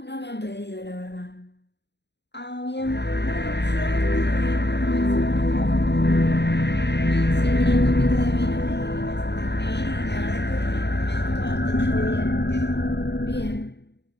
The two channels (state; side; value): late; right; 0.50 ms